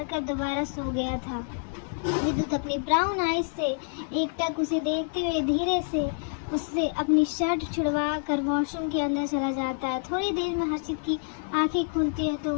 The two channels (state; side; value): silent; right; 60 dB below the other